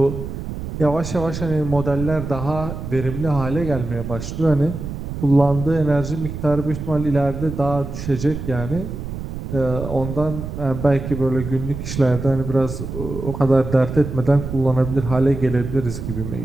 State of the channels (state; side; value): noise; right; rumble, 7 dB below the sound